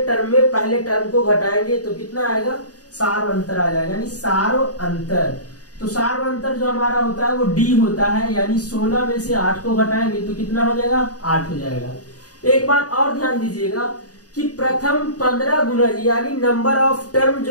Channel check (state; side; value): late; right; 0.68 ms